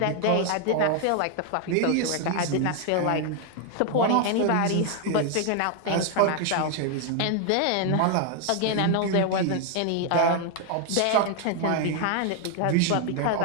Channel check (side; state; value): both; different; correlation 0.00